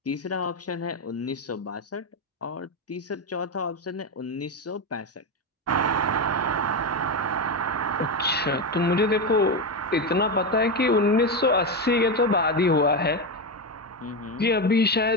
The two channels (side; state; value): both; normal; correlation 0.12